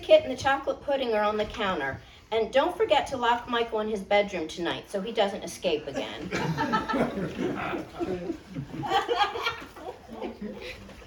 and the chocolate pudding are on the counter. And don't forget to lock Michael in his bedroom tonight so he doesn't escape again.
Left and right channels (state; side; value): identical; both; correlation 1.00